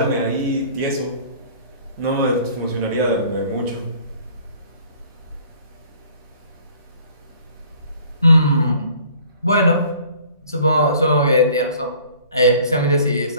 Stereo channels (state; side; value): inverted; both; correlation -0.53